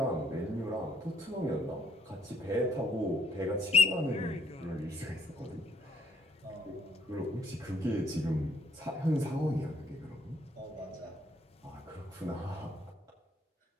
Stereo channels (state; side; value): normal; both; correlation 0.67